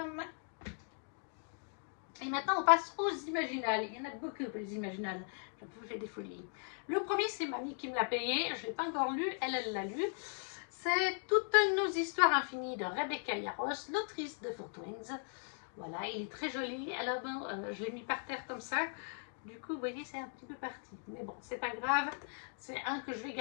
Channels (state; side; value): silent; right; 52 dB below the other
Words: Et maintenant, on passe aux imaginales. Il y en a beaucoup, les imaginales. Je vous fais des folies. Le premier, c'est Mamie qui me l'a payé. Je ne l'ai pas encore lu. Elle l'a lu. C'est Toutes nos histoires infinies de Rebecca Yarros, l'autrice de Four Twins. Voilà, il est très joli. Alors, bon, je l'ai mis par terre comme ça. Du coup, vous voyez, c'est un petit peu parti. Mais bon, c'est pas grave. C'est un que je vais